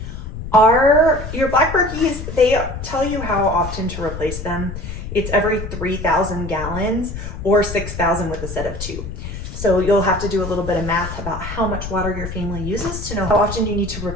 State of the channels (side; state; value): left; noise; rumble, 8 dB below the sound